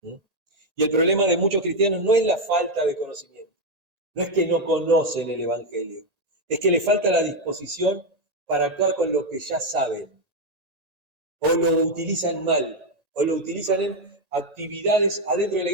Y el problema de muchos cristianos no es la falta de conocimiento, no es que no conocen el Evangelio, es que les falta la disposición para actuar con lo que ya saben, o lo utilizan mal, o lo utilizan en actividades adentro de la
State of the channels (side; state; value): left; late; 1.8 ms